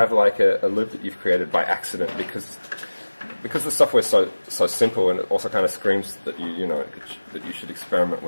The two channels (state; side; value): inverted; both; correlation -1.00